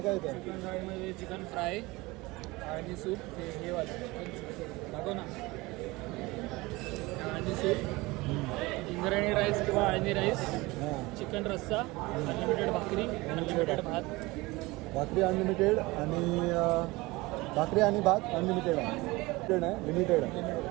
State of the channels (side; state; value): left; quieter; 22.0 dB